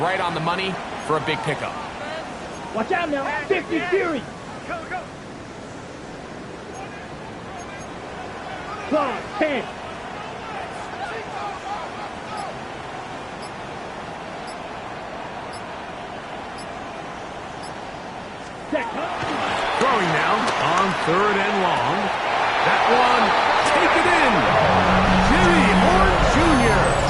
on the money for a big pickup. Watch out now. 50 Fury. Go. 10. Throwing now on 3rd and long. That one, take it in. Jimmy Horn Jr.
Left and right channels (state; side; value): identical; both; correlation 1.00